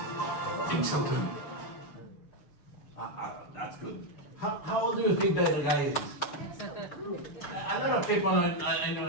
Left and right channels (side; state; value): right; late; 6.7 ms